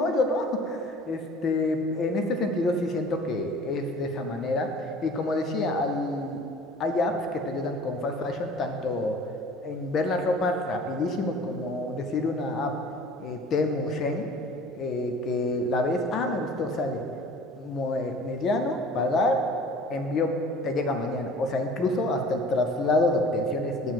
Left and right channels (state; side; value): normal; both; correlation 0.46